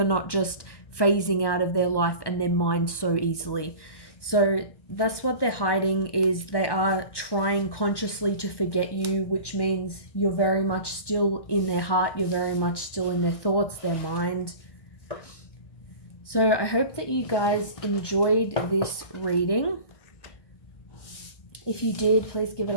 not just phasing out of their life and their mind so easily. So that's what they're hiding, is they are trying consciously to forget you, which means you're very much still in their heart. You're very much still in their thoughts, their mind. So I hope that you guys enjoyed this reading. If you did, please give it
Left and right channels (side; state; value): right; late; 1.1 ms